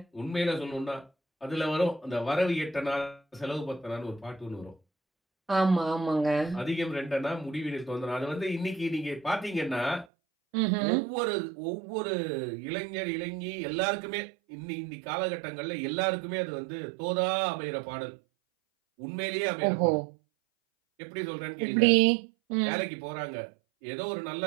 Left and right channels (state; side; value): drops out; left; at 10.1 s